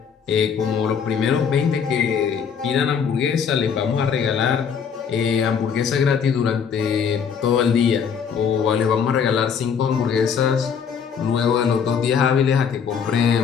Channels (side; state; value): right; quieter; 6.9 dB